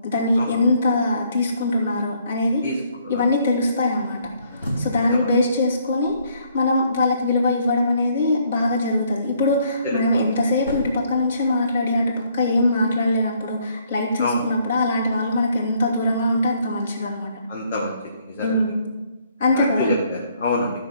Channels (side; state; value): both; inverted; correlation -0.67